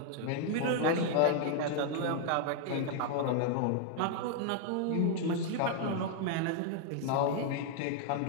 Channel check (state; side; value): different; both; correlation 0.00